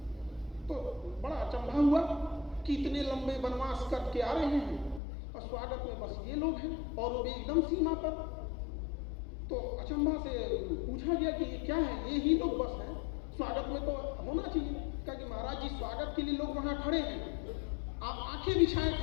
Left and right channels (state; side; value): drops out; right; at 5.0 s